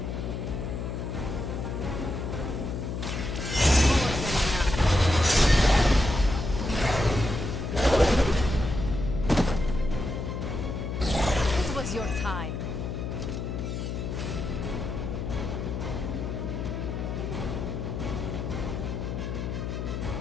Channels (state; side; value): noise; left; hum, 4 dB below the sound